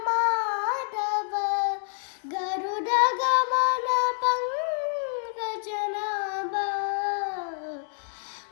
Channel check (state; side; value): silent; right; digital silence